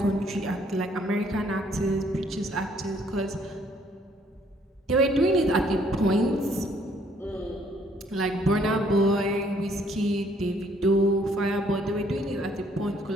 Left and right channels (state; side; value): normal; both; correlation 0.64